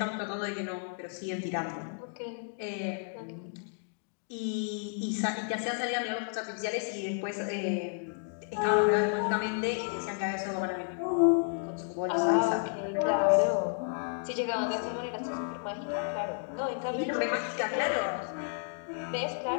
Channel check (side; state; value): right; silent; 57 dB below the other